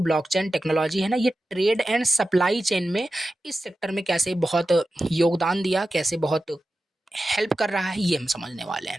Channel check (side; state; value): both; normal; correlation 0.93